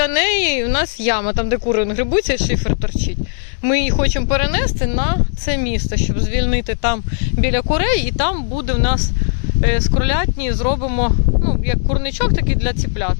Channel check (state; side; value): silent; right; digital silence